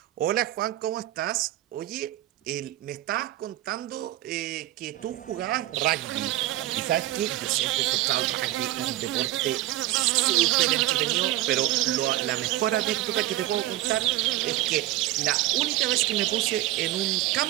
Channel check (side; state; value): left; quieter; 15.4 dB